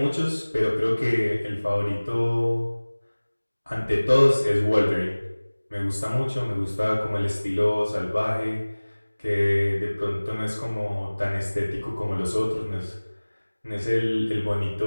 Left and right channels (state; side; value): inverted; both; correlation -1.00